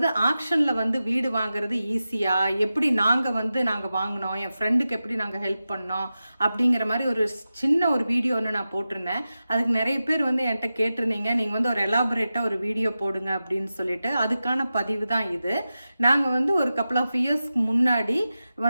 ஆக்ஷன்ல வந்து வீடு வாங்குறது ஈஸியா, எப்படி நாங்க வாங்கினோம், என் ஃப்ரெண்டுக்கு எப்படி நாங்கள் ஹெல்ப் பண்ணோம் அப்படிங்கிற மாதிரி ஒரு சின்ன ஒரு வீடியோ ஒன்று நான் போட்டிருந்தேன். அதுக்கு நிறைய பேர் வந்து என்கிட்ட கேட்டிருந்தீங்க, நீங்கள் வந்து ஒரு எலாபரேட்டாக ஒரு வீடியோ போடுங்க அப்படின்னு சொல்லிட்டு. அதுக்கான பதிவு தான் இது. நாங்கள் வந்து ஒரு கப்புள் ஆஃப் இயர்ஸ்க்கு முன்னாடி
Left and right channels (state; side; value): inverted; both; correlation -0.93